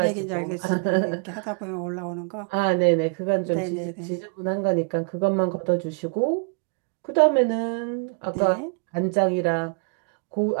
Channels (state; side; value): quieter; left; 35.1 dB